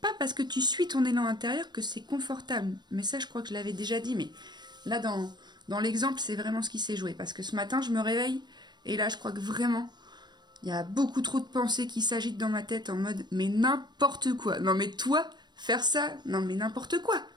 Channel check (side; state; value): left; late; 0.21 ms